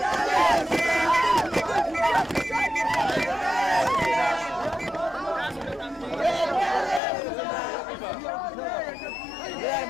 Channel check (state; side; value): drops out; right; at 7.0 s